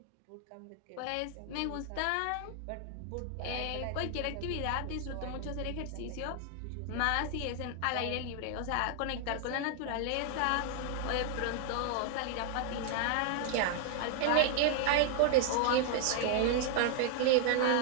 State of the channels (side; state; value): both; different; correlation 0.00